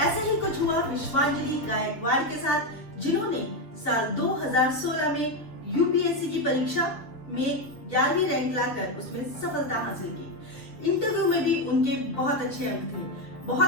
ही कुछ हुआ विश्वांजलि गायकवाड़ के साथ, जिन्होंने साल 2016 में यूपीएससी की परीक्षा में 11वीं रैंक लाकर उसमें सफलता हासिल की। इंटरव्यू में भी उनके बहुत अच्छे अंक थे।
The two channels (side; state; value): right; late; 6.7 ms